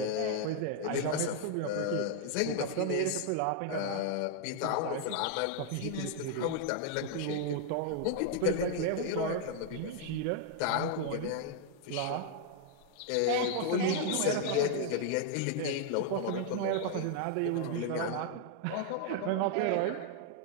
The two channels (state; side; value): different; both; correlation 0.00